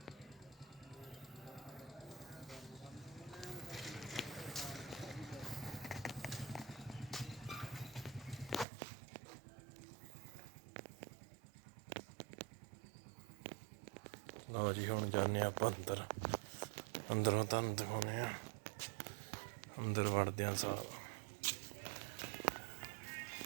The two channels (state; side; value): drops out; left; at 8.7 s